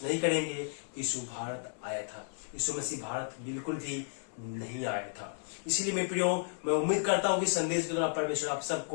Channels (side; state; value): right; silent; 56 dB below the other